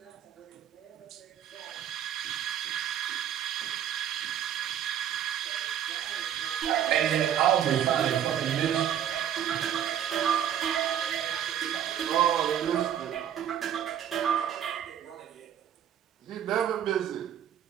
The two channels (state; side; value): quieter; left; 9.8 dB